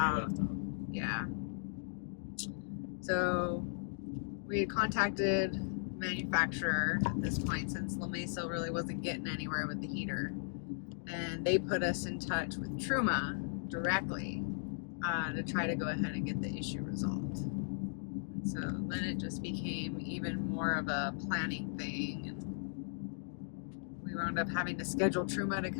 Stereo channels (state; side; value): silent; right; digital silence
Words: Yeah. So we had contacted the manufacturer at this point, since La Mesa really wasn't getting anywhere with the heater, and they put us in touch with Truma directly to try to go ahead and get the issue resolved. So then it just became even more of a planning thing, and we wound up having to schedule Truma to